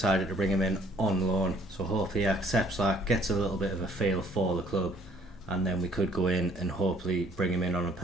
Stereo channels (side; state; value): both; normal; correlation 0.60